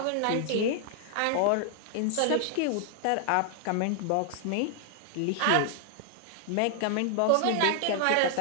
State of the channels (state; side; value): different; both; correlation 0.00